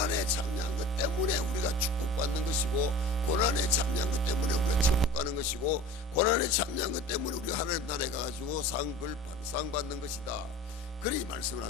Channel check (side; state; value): both; normal; correlation 0.39